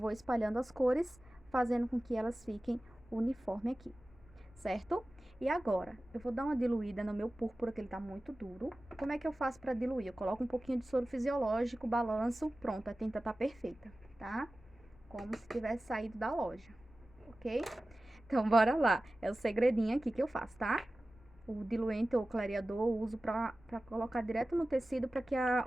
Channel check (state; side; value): noise; left; rumble, 24 dB below the sound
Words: espalhando as cores, fazendo com que elas fiquem uniforme aqui, certo? E agora, eu vou dar uma diluída no meu púrpura, que ele tá muito duro. Como é que eu faço pra diluir? Eu coloco um pouquinho de soro fisiológico, balanço, pronto, a tinta tá perfeita, tá? Como se tivesse saído da loja, ok? Então, bora lá. É o segredinho aqui que eu faço, tá? O diluente ou clareador eu uso pra colocar direto no tecido, pra que